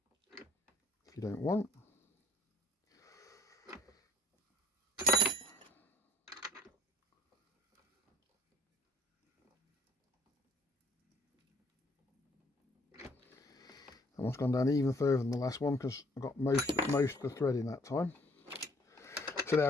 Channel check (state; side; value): normal; both; correlation 0.57